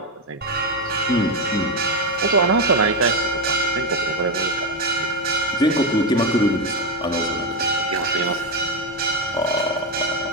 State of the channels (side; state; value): both; normal; correlation 0.10